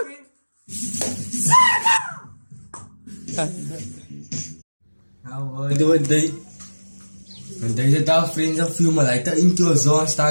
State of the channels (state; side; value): inverted; both; correlation -1.00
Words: Nou, doe het day. En deze dag vrienden viel me lijkt in queue, zo